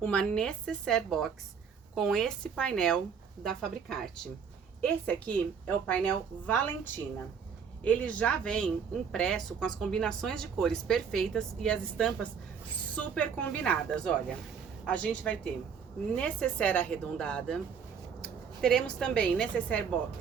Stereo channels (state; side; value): quieter; left; 6.7 dB